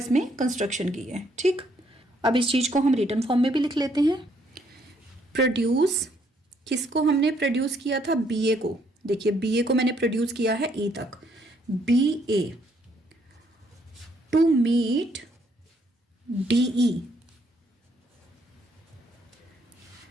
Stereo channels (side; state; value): both; normal; correlation 0.70